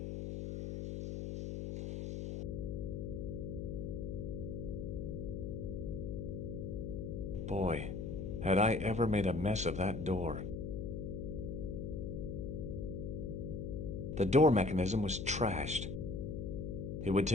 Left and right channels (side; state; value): left; noise; hum, 4 dB below the sound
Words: Boy, had I ever made a mess of that door. The door mechanism was trashed. It would